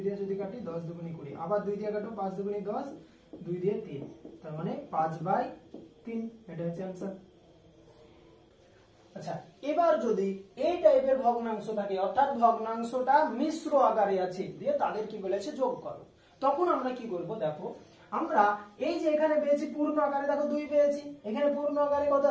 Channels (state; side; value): identical; both; correlation 1.00